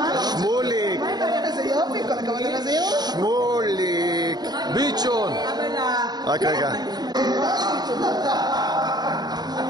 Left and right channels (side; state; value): left; late; 0.20 ms